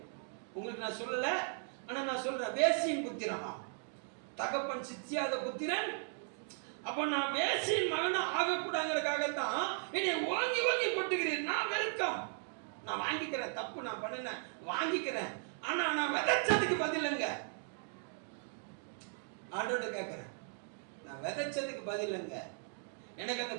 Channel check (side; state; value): left; silent; 53 dB below the other